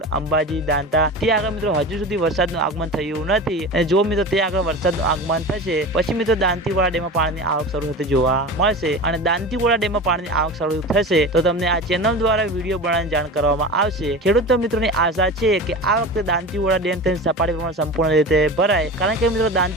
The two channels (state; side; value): normal; both; correlation 0.31